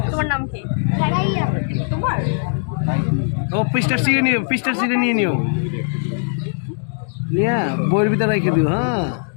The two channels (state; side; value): silent; right; digital silence